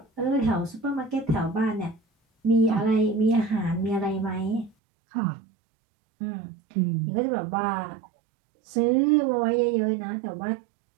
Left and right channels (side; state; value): left; drops out; at 4.7 s